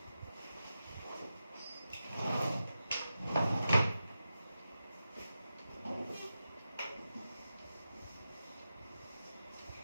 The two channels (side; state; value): both; inverted; correlation -0.91